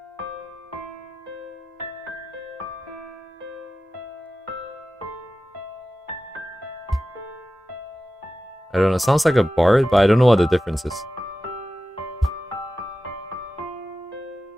I don't know, sounds like a bard, but I don't know what the difference is.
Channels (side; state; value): both; normal; correlation 0.94